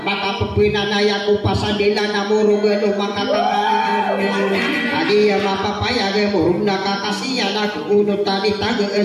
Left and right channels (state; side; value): identical; both; correlation 1.00